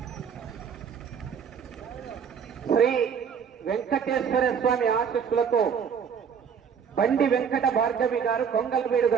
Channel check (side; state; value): left; quieter; 7.1 dB